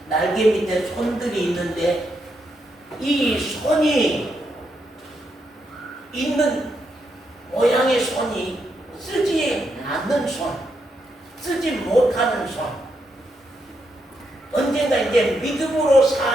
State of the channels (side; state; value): both; normal; correlation 0.80